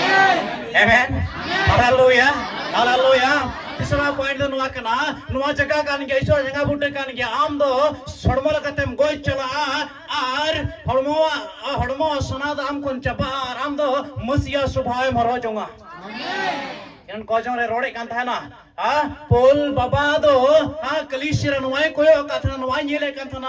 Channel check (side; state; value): both; identical; correlation 1.00